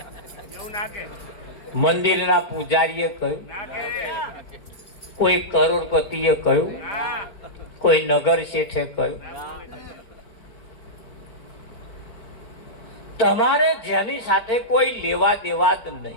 મંદિરના પૂજારીએ કહ્યું, કોઈ કરોડપતિએ કહ્યું, કોઈ નગર શેઠે કહ્યું. તમારે જેની સાથે કોઈ લેવા દેવા જ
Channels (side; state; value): right; late; 4.4 ms